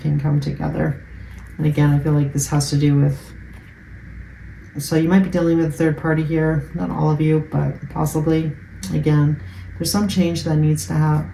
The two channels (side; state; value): both; identical; correlation 1.00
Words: can come together. And again, I feel like this has to do with, so you might be dealing with a third party here, not all of you, but possibly. Again, there's some change that needs to